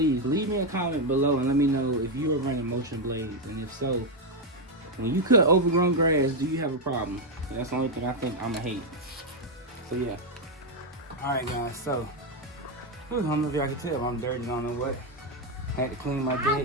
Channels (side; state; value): both; normal; correlation 0.04